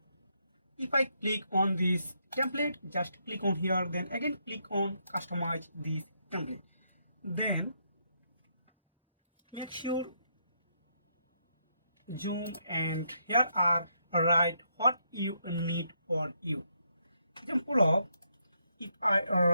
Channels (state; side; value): inverted; both; correlation -0.77